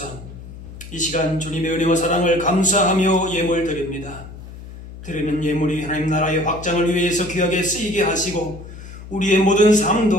이 시간 주님의 은혜와 사랑을 감사하며 예물 드립니다. 드리는 예물이 하나님 나라의 확장을 위해서 귀하게 쓰이게 하시고 우리의 모든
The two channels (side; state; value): left; noise; hum, 14 dB below the sound